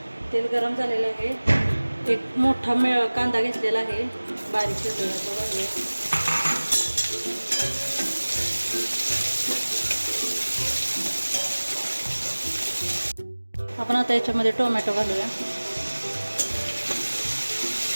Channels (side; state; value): both; inverted; correlation -1.00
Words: तेल गरम झालेलं आहे। एक मोठा कांदा घेतलेला आहे, बारीक चिरलेला, तो घालूया। आपण आता याच्यामध्ये टोमॅटो घालूया।